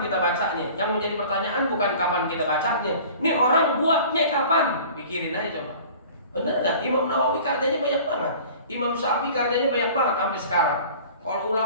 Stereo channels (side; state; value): both; inverted; correlation -0.45